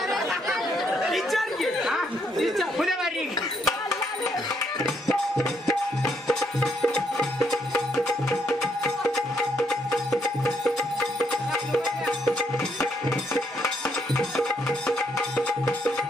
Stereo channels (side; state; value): both; normal; correlation 0.73